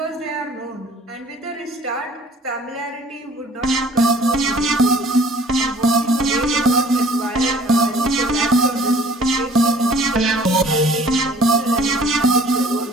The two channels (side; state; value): both; normal; correlation 0.52